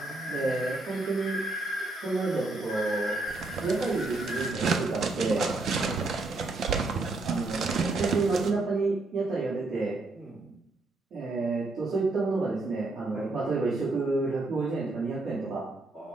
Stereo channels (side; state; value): left; quieter; 3.1 dB